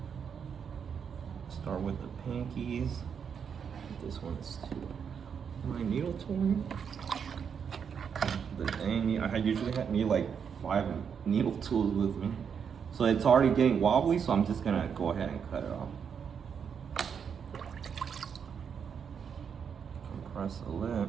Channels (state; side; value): quieter; left; 7.1 dB